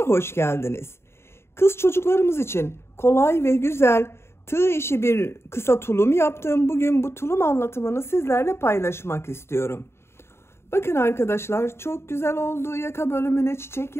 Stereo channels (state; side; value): late; right; 0.12 ms